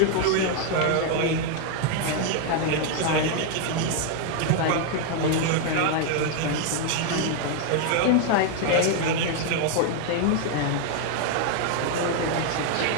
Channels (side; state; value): both; different; correlation 0.00